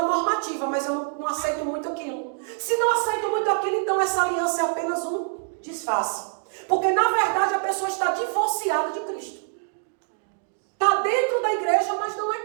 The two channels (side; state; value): left; silent; digital silence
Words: normativa, mas eu não aceito muito aquilo. Se não aceito muito aquilo, então essa aliança é apenas um disfarce. Porque na verdade a pessoa está divorciada de Cristo. Está dentro da igreja, mas não